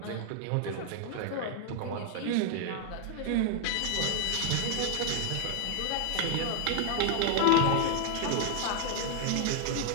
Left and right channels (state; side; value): different; both; correlation 0.00